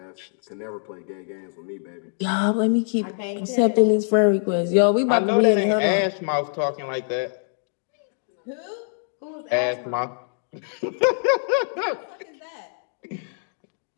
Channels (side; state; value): right; silent; digital silence